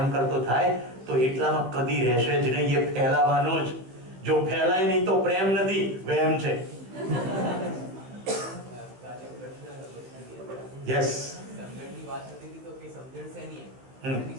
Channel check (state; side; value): late; left; 16 ms